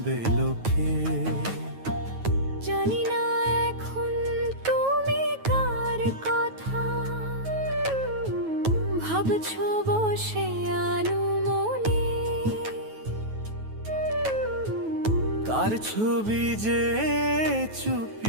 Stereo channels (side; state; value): left; late; 9.3 ms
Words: লোকে। জানি না এখন তুমি কার কথা ভাবছো বসে আনুমনে। তার ছবি যে